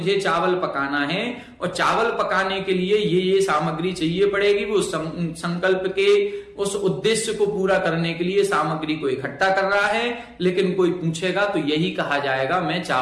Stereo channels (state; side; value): identical; both; correlation 1.00